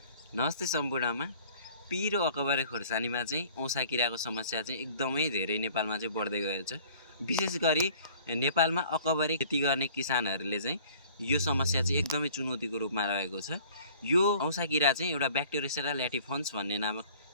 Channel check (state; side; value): inverted; both; correlation -0.52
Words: नमस्ते सम्पूर्णमा। पिरो अकबरे खोर्सानीमा चाहिँ औँसा किराको समस्या चाहिँ एकदमै धेरै नेपालमा चाहिँ बढ्दै गएको छ। विशेष गरी नेपालमा अकबरे खेती गर्ने किसानहरूले चाहिँ यो समस्या चाहिँ एकदमै चुनौतीको रूपमा रहेको छ। यो औँसा किरा चाहिँ एउटा ब्याक्टेरियोसेरा ल्याटिफन्स भन्ने नामक